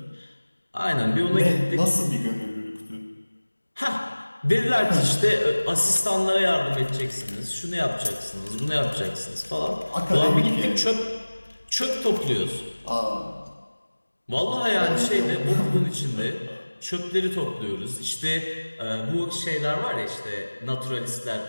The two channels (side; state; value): both; inverted; correlation -1.00